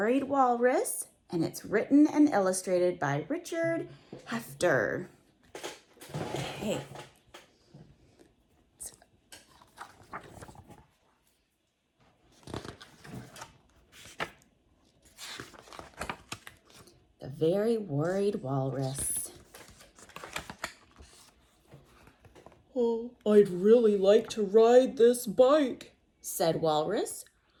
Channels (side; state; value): both; identical; correlation 1.00